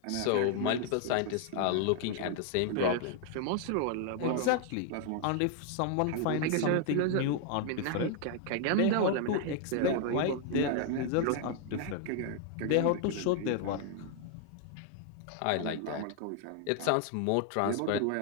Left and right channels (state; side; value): different; both; correlation 0.00